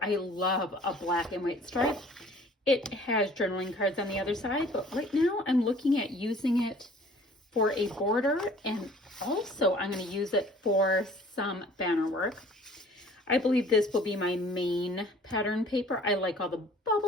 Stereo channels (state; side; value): normal; both; correlation 0.52